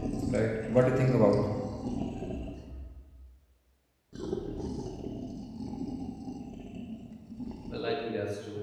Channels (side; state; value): both; identical; correlation 1.00